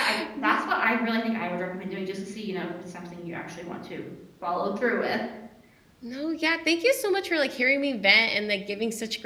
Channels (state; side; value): identical; both; correlation 1.00